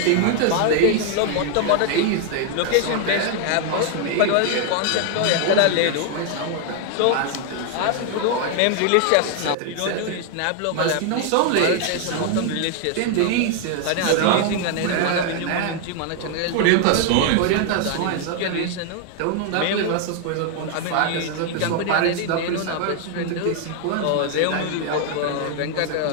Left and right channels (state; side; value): different; both; correlation 0.00